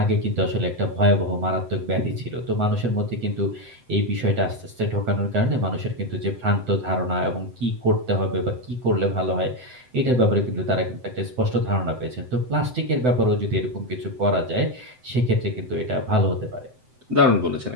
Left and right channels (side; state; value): left; late; 7.9 ms